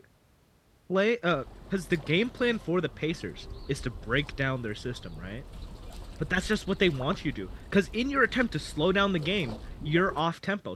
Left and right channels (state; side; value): identical; both; correlation 1.00